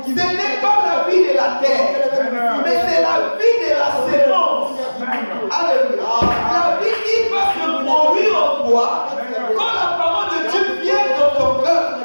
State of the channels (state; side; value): inverted; both; correlation -1.00